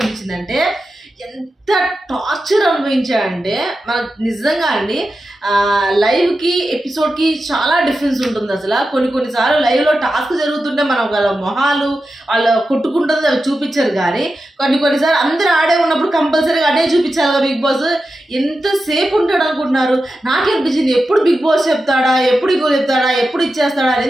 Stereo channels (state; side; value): normal; both; correlation 0.91